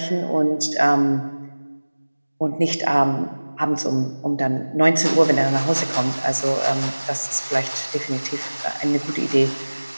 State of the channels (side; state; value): both; inverted; correlation -1.00